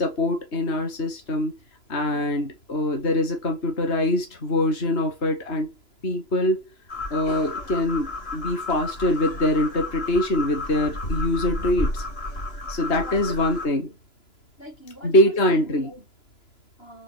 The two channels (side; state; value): right; late; 2.9 ms